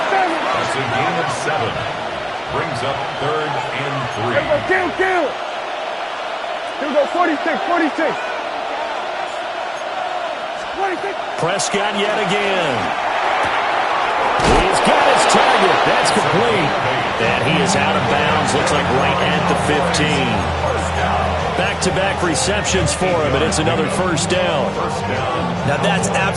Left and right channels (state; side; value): identical; both; correlation 1.00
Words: That's a gain of 7. Brings up 3rd and 3. Kill. Here we go. 46. Prescott yet again. He's got his target. That's complete. And he is out of bounds. Looks like right at the 15. Back-to-back receptions for him, and it's another first down. Now that's